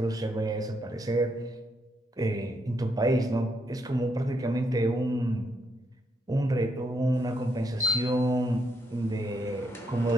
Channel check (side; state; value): both; normal; correlation 0.77